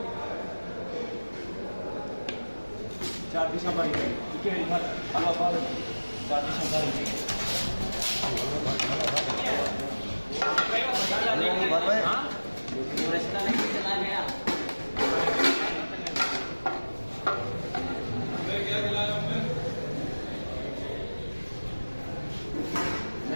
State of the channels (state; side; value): inverted; both; correlation -1.00